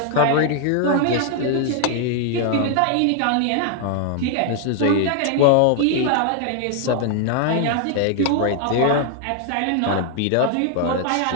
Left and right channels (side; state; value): both; different; correlation 0.00